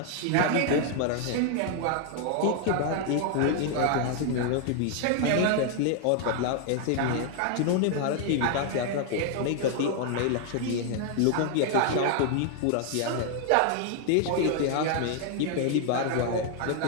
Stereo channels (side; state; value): both; different; correlation 0.00